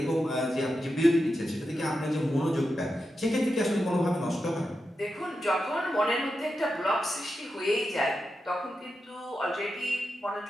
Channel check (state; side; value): normal; both; correlation 0.89